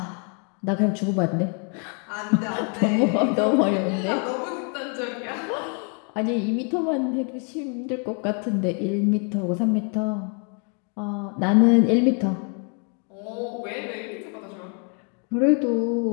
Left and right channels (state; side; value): quieter; right; 39.9 dB